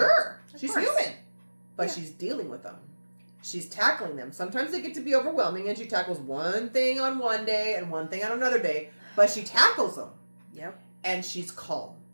She's human. But she's dealing with them. She's tackling them. Sometimes they get to be overwhelming, and she tackles one thing on one day and one thing on another day. But she tackles them. Yep. And she's calm.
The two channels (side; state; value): both; inverted; correlation -1.00